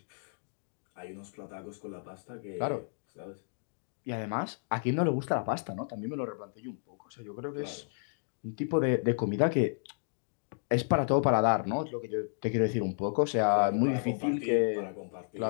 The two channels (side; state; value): right; silent; digital silence